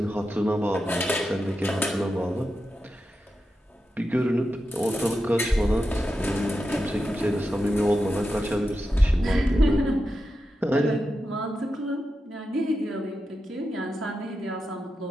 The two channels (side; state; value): both; normal; correlation 0.89